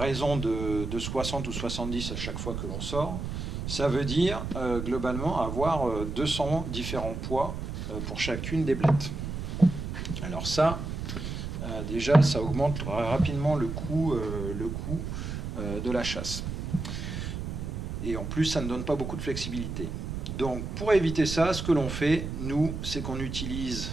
de 60 ou 70 à chaque fois que l'on sort, ça veut dire globalement avoir 200 différents poids pour chacune des blettes. Alors ça, déjà, ça augmente rapidement le coût de la chasse. Et en plus, ça ne donne pas beaucoup de flexibilité. Donc, pour éviter ça, ce que l'on fait, nous, c'est qu'on utilise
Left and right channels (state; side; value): noise; right; rumble, 5 dB below the sound